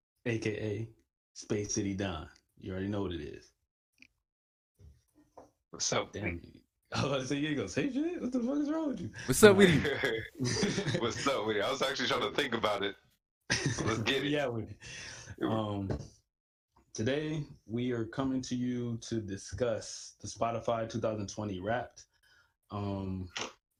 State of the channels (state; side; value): identical; both; correlation 1.00